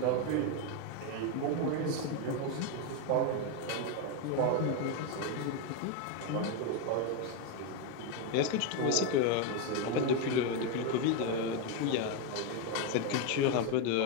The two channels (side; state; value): both; different; correlation 0.02